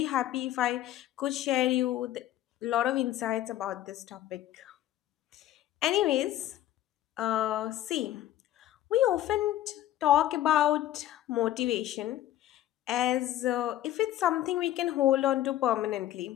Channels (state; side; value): quieter; right; 13.2 dB